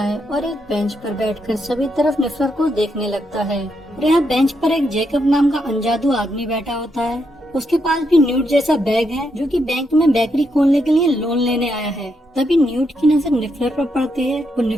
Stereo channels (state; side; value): normal; both; correlation 0.80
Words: है और एक बेंच पर बैठकर सभी तरफ निफलर को देखने लगता है। और यहाँ बेंच पर एक जेकब नाम का अनजादू आदमी बैठा होता है। उसके पास भी न्यूट जैसा बैग है, जो कि बैंक में बेकरी खोलने के लिए लोन लेने आया है। तभी न्यूट की नजर निफलर पर पड़ती है। वो